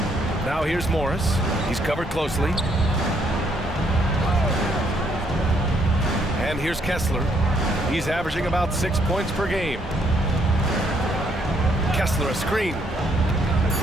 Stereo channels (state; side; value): normal; both; correlation 0.70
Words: Now here's Morris. He's covered closely. And here's Kessler. He's averaging about 6 points per game. Kessler a screen.